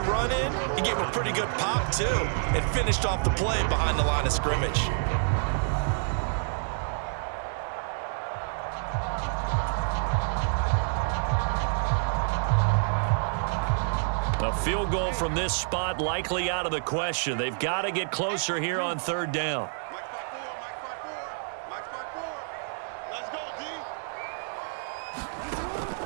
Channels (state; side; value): silent; left; digital silence